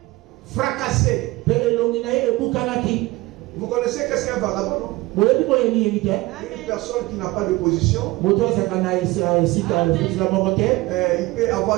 fracassé. Vous connaissez qu'est-ce qu'un vagabond, non? Une personne qui n'a pas de position. Il peut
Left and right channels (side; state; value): left; quieter; 20.5 dB